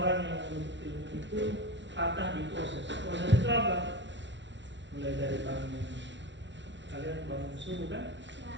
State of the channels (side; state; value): left; late; 0.53 ms